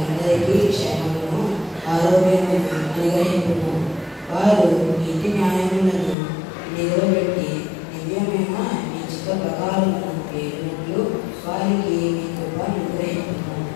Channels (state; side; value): drops out; right; at 6.2 s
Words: క్షేమమును ఆరోగ్యమును అనుగ్రహించుము. వారు నీతి న్యాయములను నిలబెట్టి దివ్యమైన నీ చిత్త ప్రకారమును పేరునట్లు వారికి నీ కృపను అనుగ్రహించుము.